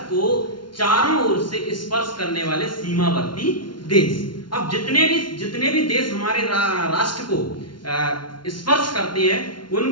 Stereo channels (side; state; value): right; late; 0.71 ms